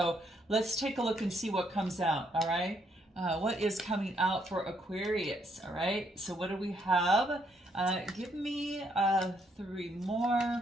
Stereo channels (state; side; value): normal; both; correlation 0.72